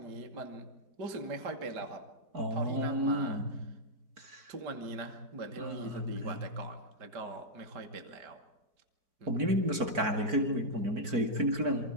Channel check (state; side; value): late; left; 4.5 ms